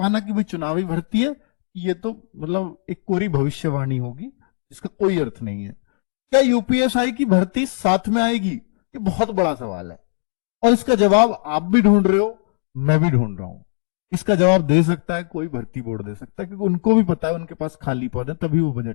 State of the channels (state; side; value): silent; right; digital silence